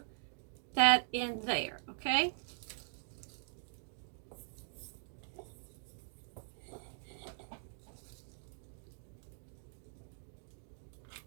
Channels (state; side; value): silent; left; digital silence